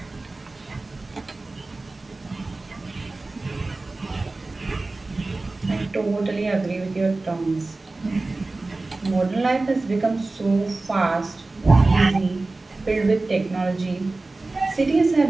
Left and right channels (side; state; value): left; quieter; 3.3 dB